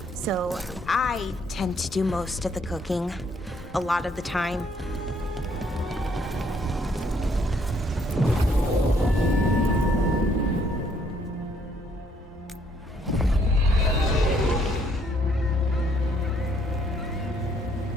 So I tend to do most of the cooking, a lot of the time.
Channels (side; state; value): both; normal; correlation 0.67